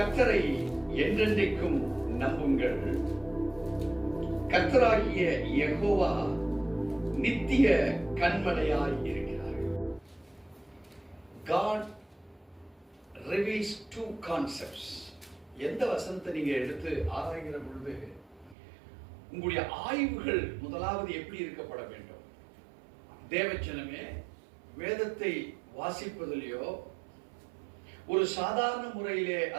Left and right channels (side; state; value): left; drops out; at 18.6 s